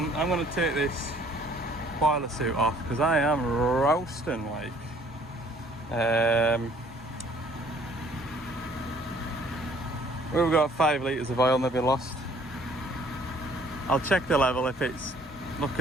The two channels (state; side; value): normal; both; correlation 0.58